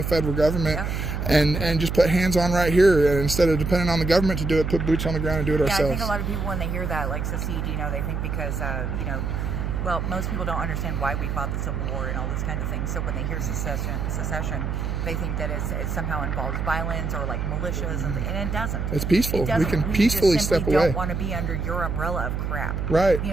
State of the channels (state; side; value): noise; right; hum, 2 dB below the sound